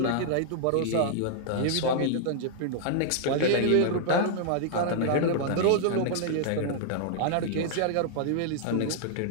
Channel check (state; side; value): different; both; correlation -0.01